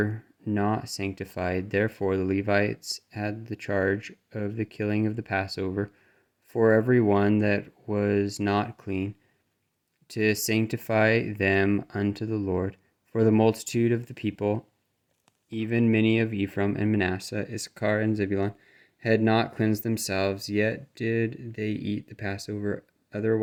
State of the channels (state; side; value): identical; both; correlation 1.00